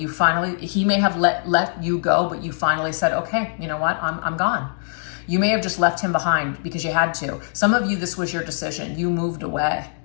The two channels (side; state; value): right; silent; digital silence